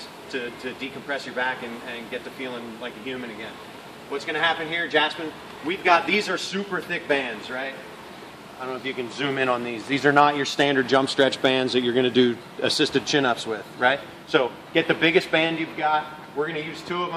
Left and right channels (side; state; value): both; identical; correlation 1.00